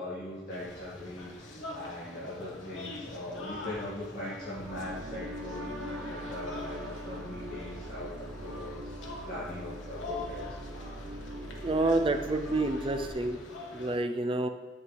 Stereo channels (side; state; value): both; normal; correlation 0.56